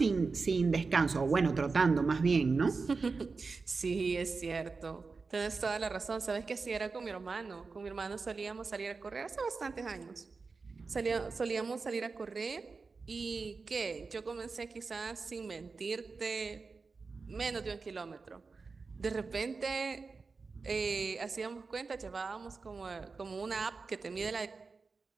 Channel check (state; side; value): quieter; left; 4.4 dB